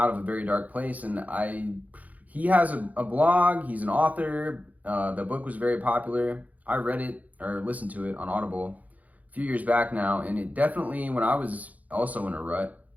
of a very dark place. And he has a blog, he's an author, the book was very popular. I read it or listened to it on Audible a few years back now, and it definitely, when I was also in a rut,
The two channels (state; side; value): late; left; 0.076 ms